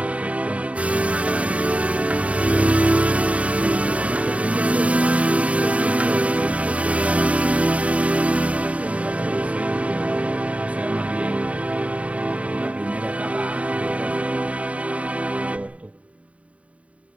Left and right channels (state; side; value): late; left; 0.065 ms